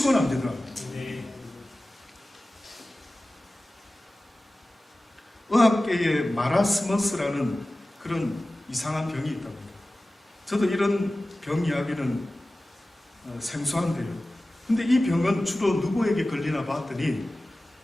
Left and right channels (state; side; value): normal; both; correlation 0.96